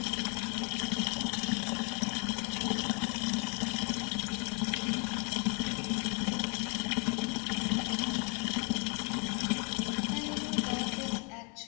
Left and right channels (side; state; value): right; quieter; 36.1 dB